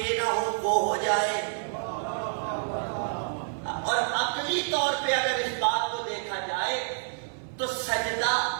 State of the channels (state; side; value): silent; left; 59 dB below the other